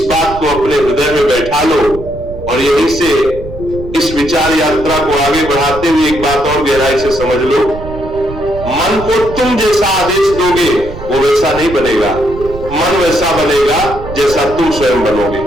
बात को अपने हृदय में बैठा लो। और यहीं से इस विचार यात्रा को आगे बढ़ाते हुए एक बात और गहराई से समझ लो, मन को तुम जैसा आदेश दोगे वो वैसा नहीं बनेगा। मन वैसा बनेगा जैसा तुम स्वयं बनोगे,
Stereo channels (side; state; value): right; noise; rumble, 12 dB below the sound